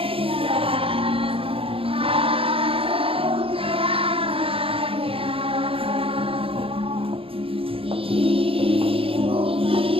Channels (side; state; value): left; late; 0.27 ms